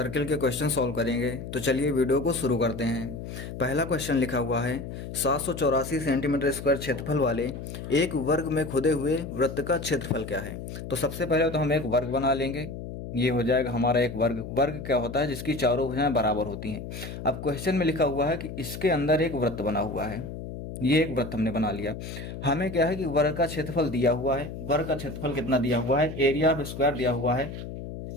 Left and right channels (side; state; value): left; noise; hum, 9 dB below the sound